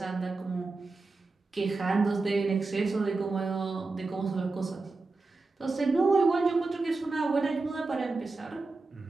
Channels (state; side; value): quieter; left; 3.6 dB